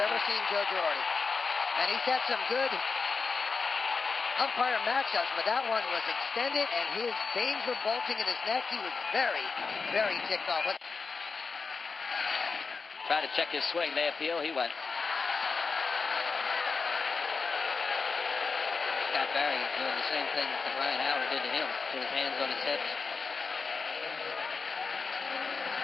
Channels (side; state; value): right; quieter; 4.7 dB